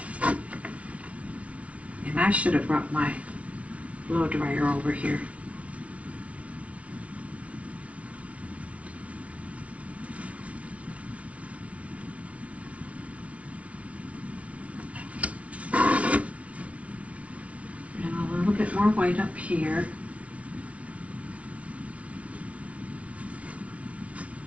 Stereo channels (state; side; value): late; left; 0.064 ms